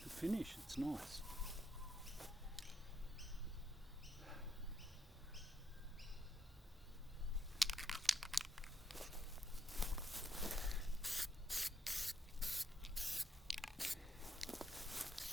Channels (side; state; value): both; normal; correlation 0.77